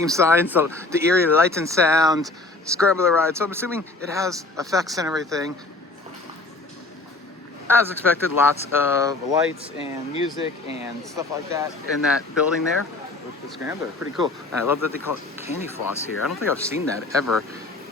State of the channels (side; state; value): right; quieter; 3.3 dB